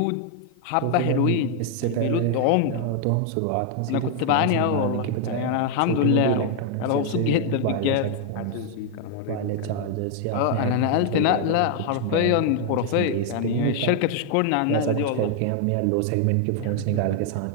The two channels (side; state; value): both; different; correlation 0.00